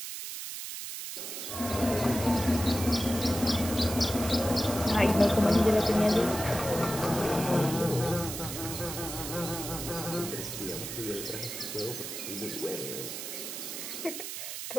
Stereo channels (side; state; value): right; noise; hiss, 7 dB below the sound